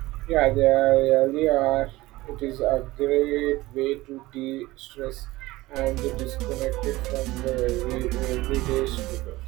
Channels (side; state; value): left; quieter; 18.8 dB